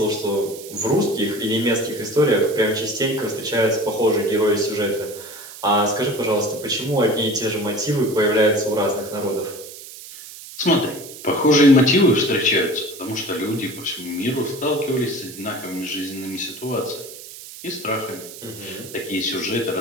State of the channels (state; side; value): noise; right; hiss, 15 dB below the sound